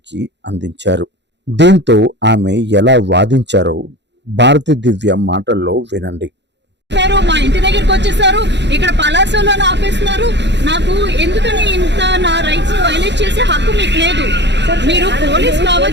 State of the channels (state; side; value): late; left; 0.51 ms